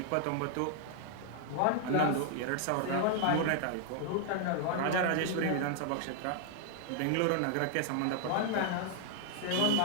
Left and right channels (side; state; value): both; different; correlation 0.00